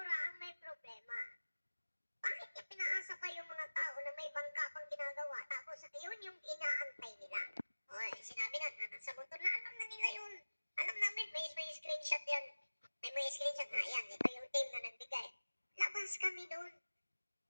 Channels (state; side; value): inverted; both; correlation -1.00